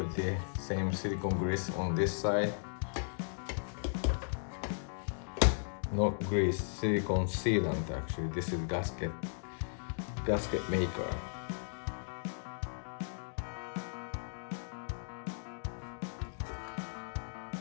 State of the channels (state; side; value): silent; right; digital silence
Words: the same silicone grease on this side. not grease, silicone sealant actually. This is gasket maker.